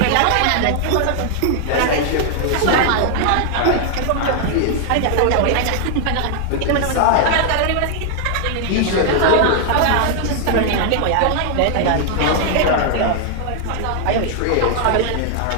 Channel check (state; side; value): different; both; correlation 0.00